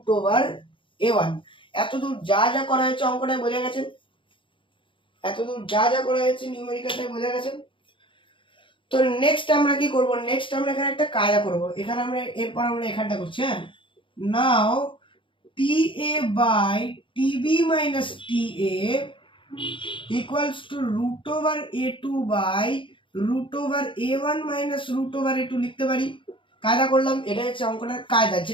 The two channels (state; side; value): late; right; 0.25 ms